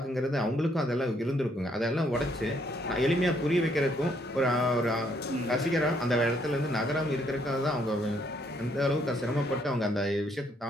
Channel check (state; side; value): normal; both; correlation 0.70